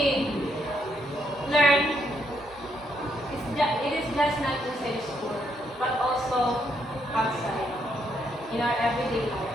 learn, it is just not inside school, but also outside, in our everyday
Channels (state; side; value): noise; right; hum, 27 dB below the sound